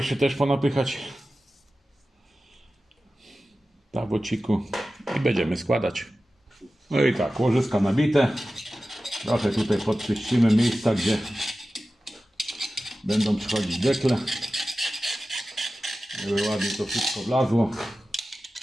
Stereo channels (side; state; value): both; normal; correlation 0.95